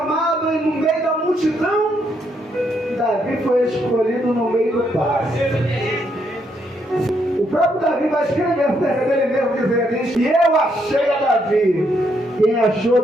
no meio da multidão, Davi foi escolhido no meio do pasto. O próprio Davi vai escrever acerca dele mesmo, dizendo isso: e eu achei a Davi. Quem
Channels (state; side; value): normal; both; correlation 0.75